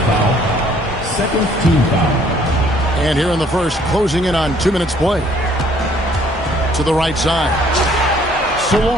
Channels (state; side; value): normal; both; correlation 0.61